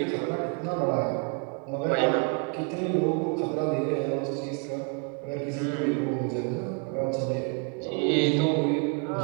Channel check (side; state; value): left; quieter; 35.2 dB